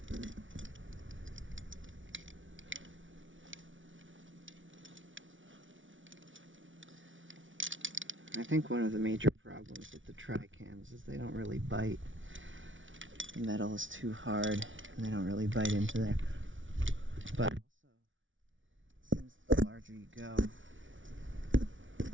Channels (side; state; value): left; late; 0.56 ms